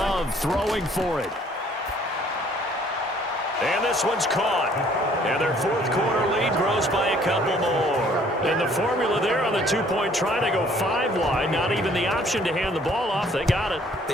throwing for it. And this one's caught. And their fourth quarter lead grows by a couple more. And the formula there on the two-point try to go 5 wide. Not even the option to hand the ball off. They got it. They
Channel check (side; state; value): both; normal; correlation 0.59